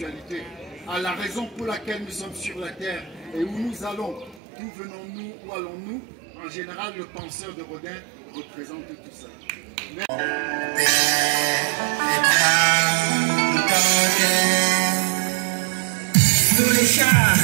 à la raison pour laquelle nous sommes sur la terre et où nous allons, d'où venons-nous, où allons-nous. En général, le penseur de Rodin représente tout ça. Sur les chars,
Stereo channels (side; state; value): left; drops out; at 4.4 s